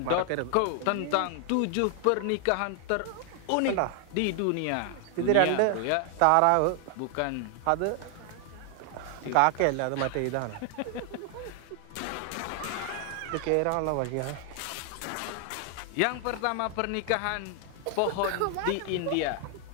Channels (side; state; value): both; different; correlation 0.00